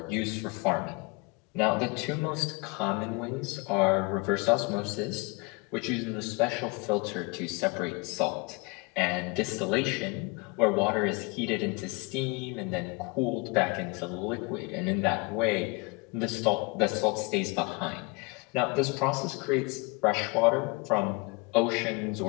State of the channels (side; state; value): right; quieter; 28.4 dB